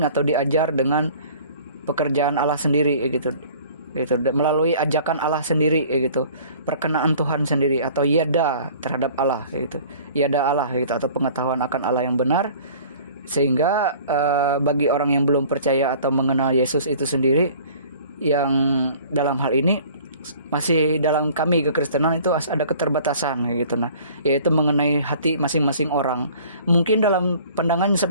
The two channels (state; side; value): inverted; both; correlation -0.49